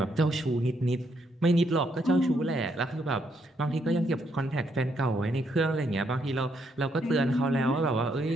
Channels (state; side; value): normal; both; correlation 0.75